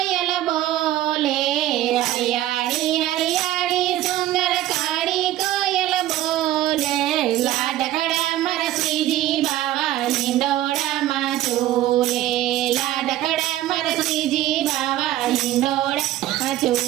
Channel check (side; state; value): left; quieter; 14.1 dB